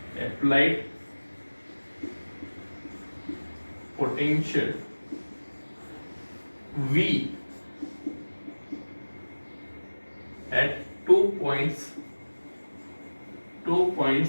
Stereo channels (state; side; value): inverted; both; correlation -1.00